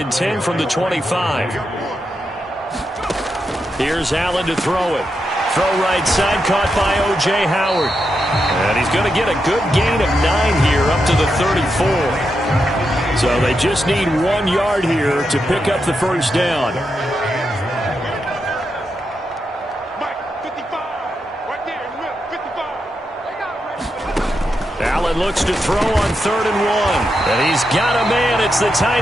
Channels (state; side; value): normal; both; correlation 0.85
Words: and 10 from the 25. Here's Allen to throw it. Throw right side, caught by O.J. Howard. And he's going to get a good gain of 9 here up to the 34. So they just need 1 yard here to pick up the 1st down. Allen looks to throw on 3rd and 1. And he's got a man. It's the